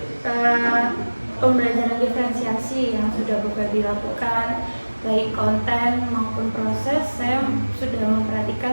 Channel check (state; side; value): inverted; both; correlation -1.00